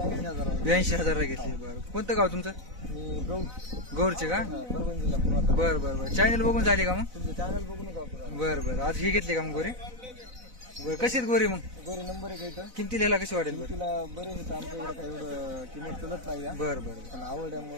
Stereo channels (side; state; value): left; late; 4.0 ms